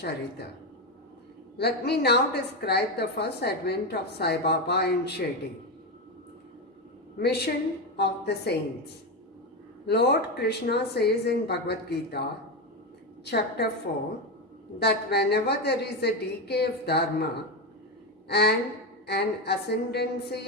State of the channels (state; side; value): normal; both; correlation 0.12